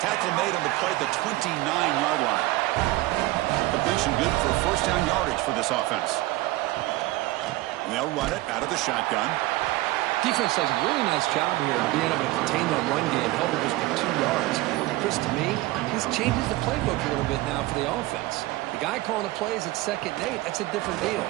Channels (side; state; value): left; quieter; 18.9 dB